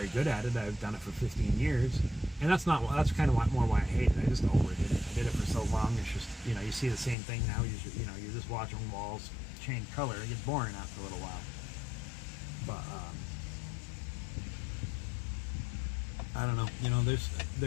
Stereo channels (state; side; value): drops out; right; at 7.2 s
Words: good at it. I've done it for 15 years, and that's kind of more why I hate it. I just overdid it. I did it for so long. It's just, you know, you see the same thing now. You know, you're just watching walls change color. It gets boring after a little while. But I don't know, you know,